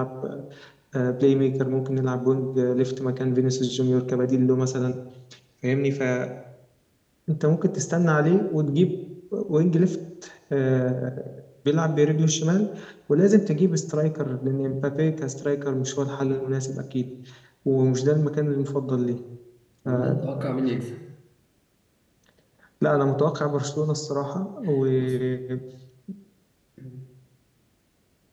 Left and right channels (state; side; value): identical; both; correlation 1.00